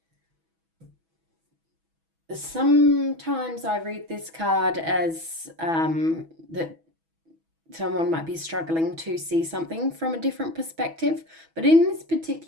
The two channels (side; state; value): left; late; 6.1 ms